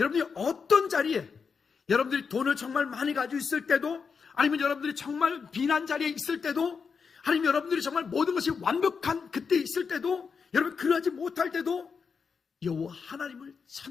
어떤 자리에, 여러분들이 돈을 정말 많이 가지고 있을 때도, 아니면 여러분들이 정말 비난 자리에 있을 때도, 아니면 여러분들이 정말 모든 것이 완벽한 그때 있을 때도, 여러분 그러하지 못할 때도 여호와 하나님을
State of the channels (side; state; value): right; quieter; 5.7 dB